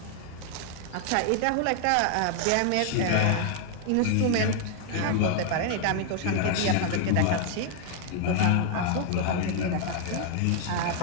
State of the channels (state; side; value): different; both; correlation 0.00